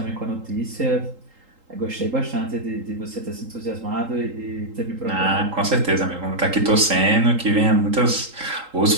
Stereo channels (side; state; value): left; late; 3.8 ms